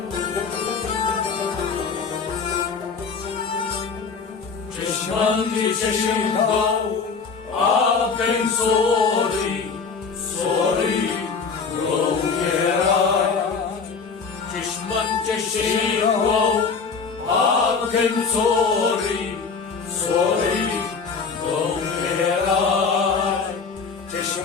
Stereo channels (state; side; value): quieter; right; 5.2 dB